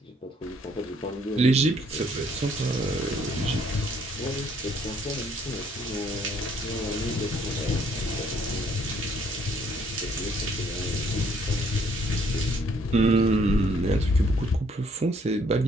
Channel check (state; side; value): normal; both; correlation 0.65